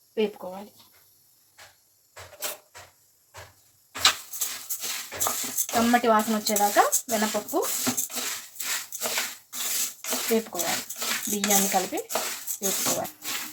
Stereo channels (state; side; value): identical; both; correlation 1.00